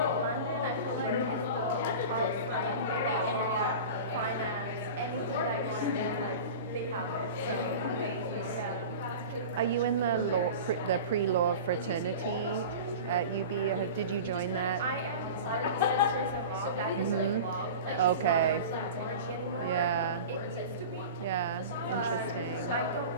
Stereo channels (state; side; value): inverted; both; correlation -0.33